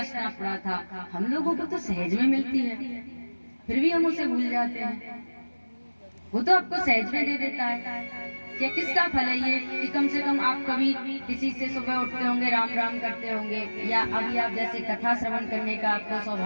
पड़ा था। हम लोगों को तो सहज में मिलती है, फिर भी हम उसे भूल जाते हैं। वो तो आपको सहज में दे देता है। क्या किसका फल है ये कि कम से कम आप कभी किसी से सुबह उठते होंगे, राम राम करते होंगे, या अभी आप जैसे कथा श्रवण करने का आपको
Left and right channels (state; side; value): inverted; both; correlation -1.00